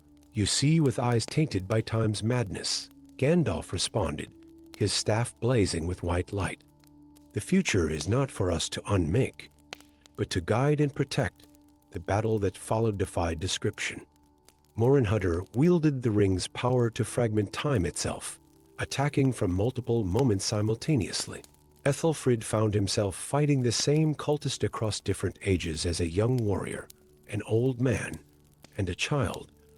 You see with eyes tainted by time's madness, Gandalf responded, his staff blazing with white light. The future is not for us to unmake, but to guide and protect. The battle that followed defied description. Morinhutter wielded the ring's power to fragment time itself, attacking from multiple moments simultaneously. Ethelfrid found himself fighting the same cultist across different ages as a young warrior, an old man, and a child,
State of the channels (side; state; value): both; identical; correlation 1.00